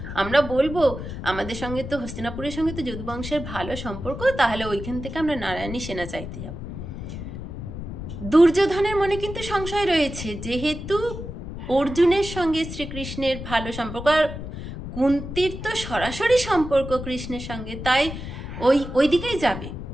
আমরা বলবো আমাদের সঙ্গে তো হস্তিনাপুরের সঙ্গে তো যদু বংশের ভালো সম্পর্ক, তাহলে ওইখান থেকে আমরা নারায়ণী সেনা চাইতে যাব। দুর্যোধনের মনে কিন্তু সংশয় রয়েছে, যেহেতু অর্জুনের সঙ্গে শ্রীকৃষ্ণের ভালো সম্পর্ক, আর কুন্তির তো সরাসরি সম্পর্ক কৃষ্ণের সঙ্গে, তাই ওই দিকেই যাবে।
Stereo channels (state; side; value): noise; left; rumble, 8 dB below the sound